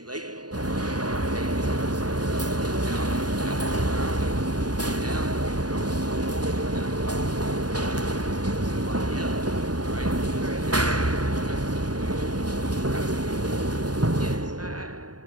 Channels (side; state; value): left; late; 0.69 ms